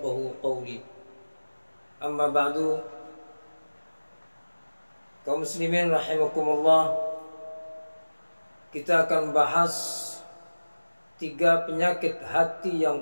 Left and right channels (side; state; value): both; inverted; correlation -1.00